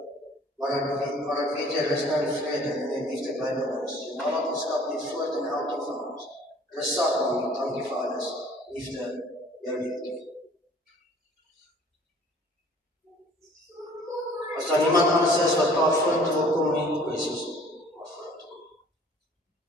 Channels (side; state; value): both; normal; correlation 0.53